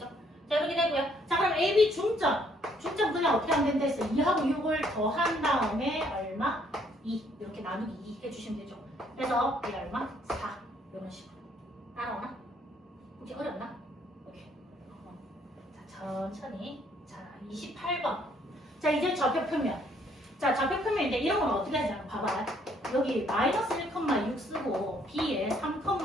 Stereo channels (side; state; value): both; normal; correlation 0.66